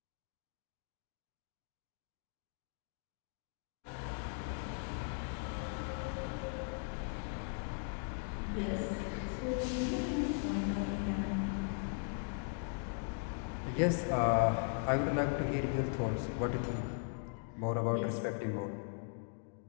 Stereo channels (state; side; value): silent; right; 52 dB below the other